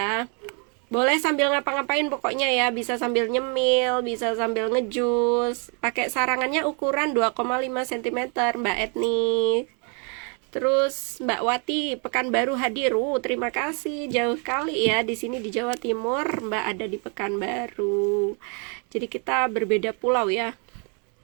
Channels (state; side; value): quieter; left; 37.3 dB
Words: Boleh sambil ngapa-ngapain pokoknya ya. Bisa sambil nyemil, bisa sambil ngejus. Pakai sarangannya ukuran 2,5 cm Mbak Etni. Terus Mbak Wati Pekanbaru hadir. Terima kasih, jauh kali ya di sini di Jawa Timur. Mbak ada di Pekanbaru. Jadi kita berbeda pulau ya.